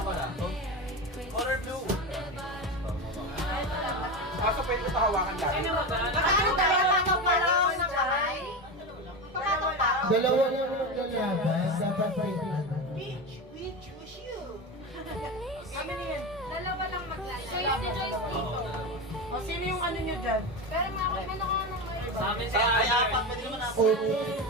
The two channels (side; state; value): both; normal; correlation 0.20